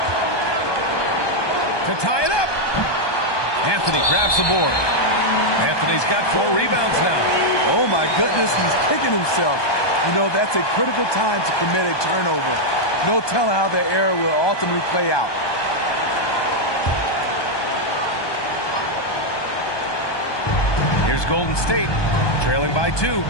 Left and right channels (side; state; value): right; late; 1.2 ms